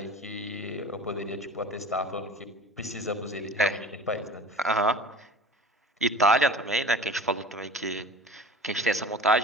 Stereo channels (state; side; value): normal; both; correlation 0.39